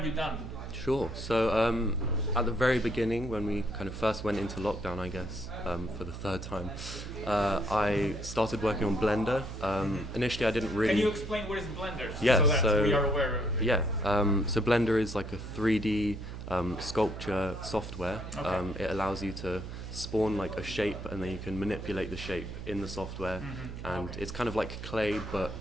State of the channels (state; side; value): noise; right; hum, 9 dB below the sound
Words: you done? Sure. So at the very beginning, when we kind of first went into lockdown, I guess, for the third time, I started working on Blender. Initially, I didn't really... Can you explain what is Blender? Yeah, so that so we are aware of it. Yeah, so Blender is like a 3D sculpture software. Okay. It allows you to spawn like a shape, and then you can manipulate the shape in the software, and it's kind of like clay but